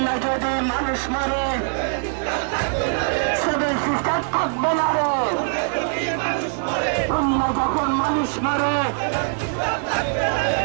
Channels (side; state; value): left; silent; 60 dB below the other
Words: যদি মানুষ মারে সিভিল সিস্টেম থাকবে না রে। অন্য যখন মানুষ মারে